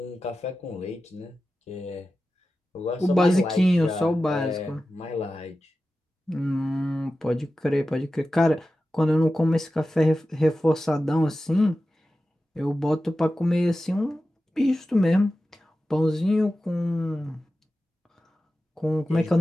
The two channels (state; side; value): normal; both; correlation 0.93